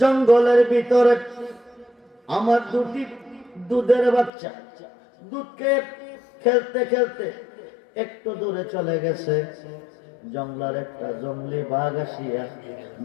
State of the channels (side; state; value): right; drops out; at 4.3 s